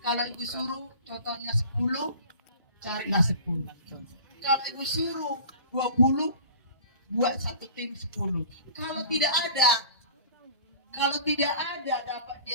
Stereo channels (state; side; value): inverted; both; correlation -0.42